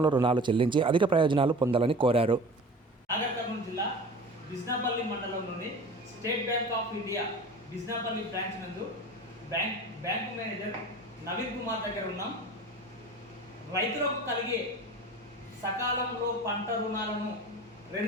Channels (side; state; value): both; normal; correlation 0.37